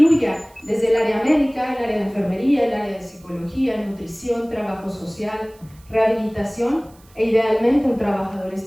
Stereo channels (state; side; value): noise; right; hiss, 29 dB below the sound